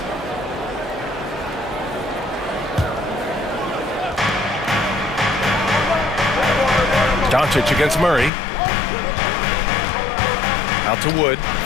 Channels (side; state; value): right; drops out; at 8.3 s